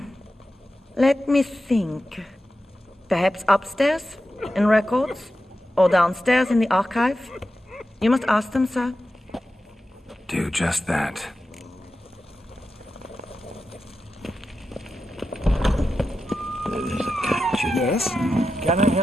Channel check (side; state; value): both; normal; correlation 0.91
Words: Let me think. Perhaps upstairs, in records? Or downstairs in the archive? You must ask them, sir. Do just that. There's a catch. Yes? Can I